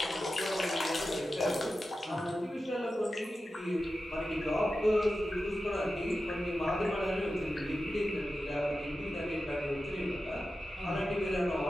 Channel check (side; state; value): both; normal; correlation 0.92